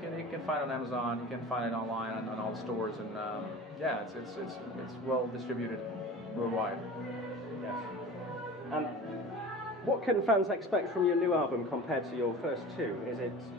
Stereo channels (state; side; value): normal; both; correlation 0.37